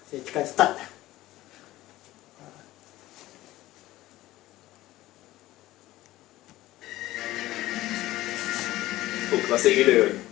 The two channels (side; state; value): right; quieter; 16.5 dB